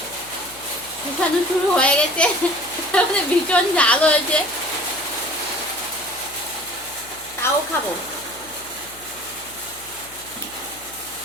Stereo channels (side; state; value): left; noise; hum, 24 dB below the sound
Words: দেখানো শুরু হয়ে গেছে, তারপরে ভীষণ ঝাল হয়েছে, তাও খাবো।